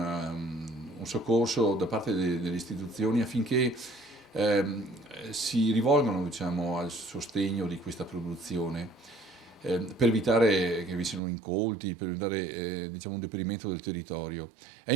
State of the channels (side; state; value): left; drops out; at 11.2 s